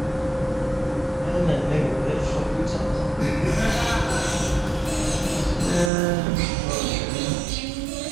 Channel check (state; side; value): drops out; left; at 5.9 s